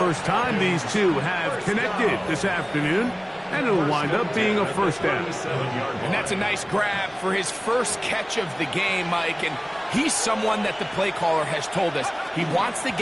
time these two have connected this afternoon. And it'll wind up being a first down. And that's a nice grab for his first catch of the game, Mike. And he's someone that the play caller has told us he wants to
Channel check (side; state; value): both; identical; correlation 1.00